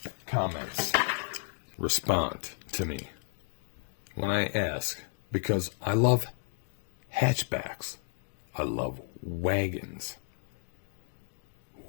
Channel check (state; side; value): silent; right; 56 dB below the other